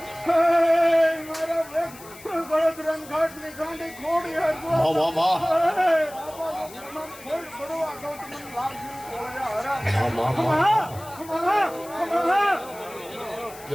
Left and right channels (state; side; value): noise; left; hiss, 19 dB below the sound